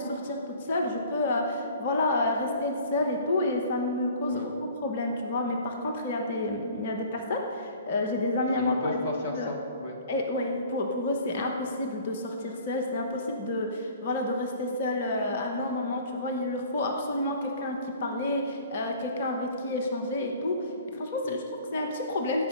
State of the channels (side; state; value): both; inverted; correlation -0.48